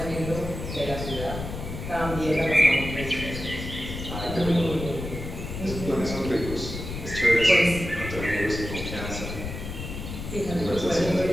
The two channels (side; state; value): left; noise; rumble, 7 dB below the sound